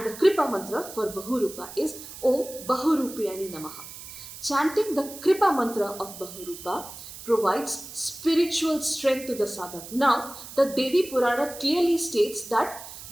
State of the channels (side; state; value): right; noise; hiss, 13 dB below the sound